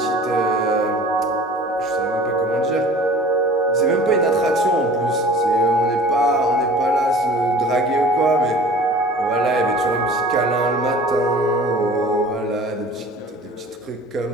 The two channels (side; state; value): both; normal; correlation 0.44